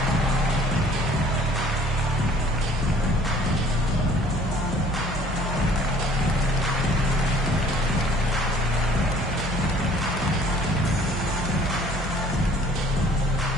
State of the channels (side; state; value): both; normal; correlation 0.55